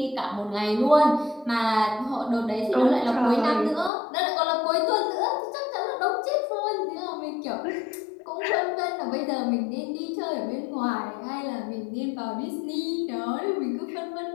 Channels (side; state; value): right; drops out; at 3.9 s